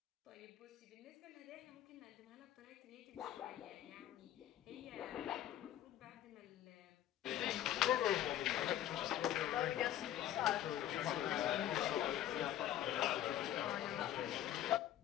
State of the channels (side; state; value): right; quieter; 11.9 dB